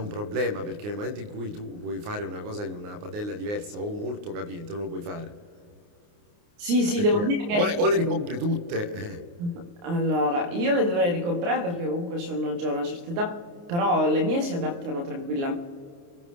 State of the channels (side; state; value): left; late; 29 ms